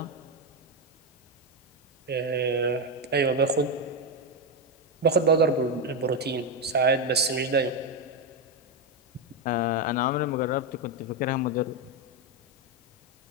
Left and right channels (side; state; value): both; normal; correlation 0.08